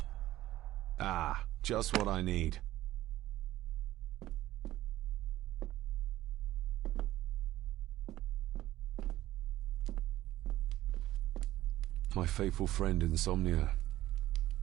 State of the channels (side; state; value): left; quieter; 15.1 dB